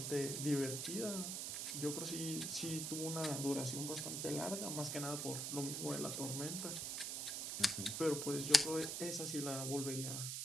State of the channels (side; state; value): right; noise; hiss, 2 dB below the sound